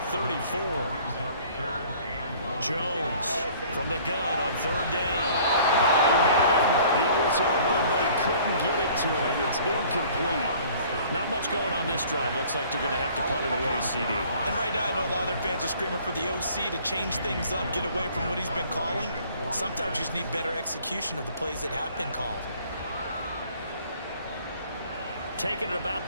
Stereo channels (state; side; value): inverted; both; correlation -0.53